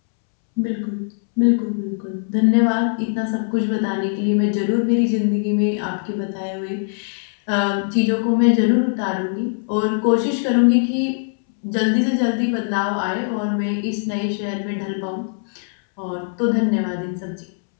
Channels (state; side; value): silent; right; 65 dB below the other